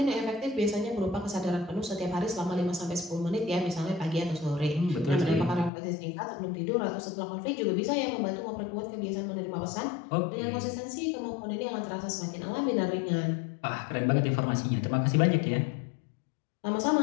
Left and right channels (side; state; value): right; drops out; at 5.7 s